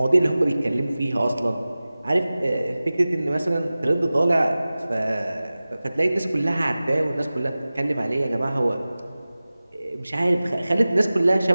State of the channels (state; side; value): inverted; both; correlation -0.97